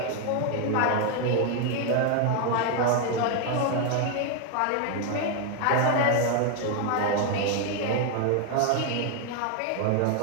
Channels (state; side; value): different; both; correlation 0.01